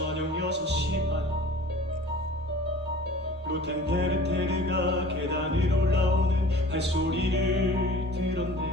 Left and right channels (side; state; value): both; normal; correlation 0.45